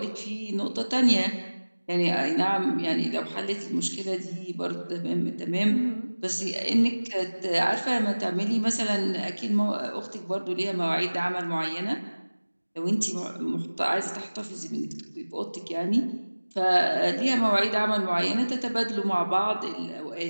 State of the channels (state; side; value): inverted; both; correlation -1.00